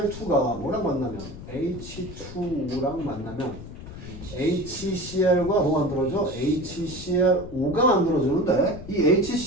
뭐랑 만나면 H2O랑 만나면 HCl과 뭐 만들어져? HCl5가 만들어지는데 이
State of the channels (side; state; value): left; noise; rumble, 13 dB below the sound